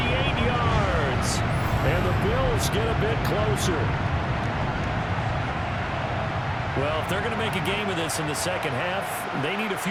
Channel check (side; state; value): both; identical; correlation 1.00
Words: yards. And the Bills get a bit closer. Well, if they're going to make a game of this in the second half, they need a